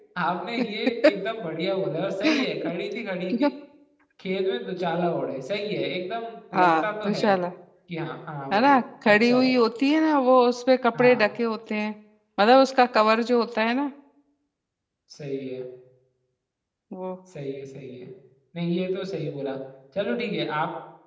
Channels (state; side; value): identical; both; correlation 1.00